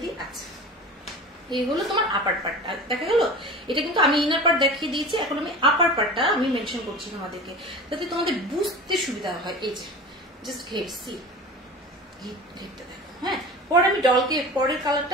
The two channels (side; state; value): both; normal; correlation 0.35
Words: দিই। আচ্ছা, এই হলো তোমার আপার পার্টটা, দেখা গেল? এটা কিন্তু আমি ইনার পার্ট দেখিয়ে দিয়েছি, এখন আমি আপার পার্টটা আমি মেনশন করছি তোমাদেরকে, যাতে তোমাদের বুঝতে সুবিধা হয়। এই যে জাস্ট ঘের, সি ঘেরটা দেখো। হ্যাঁ, পরে আমি ডলকে, পরের কালারটা